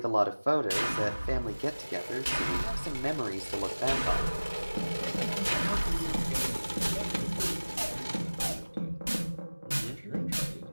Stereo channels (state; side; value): inverted; both; correlation -1.00